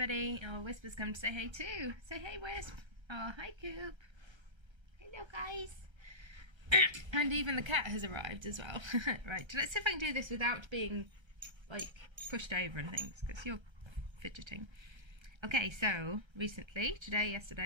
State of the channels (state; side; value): late; left; 1.3 ms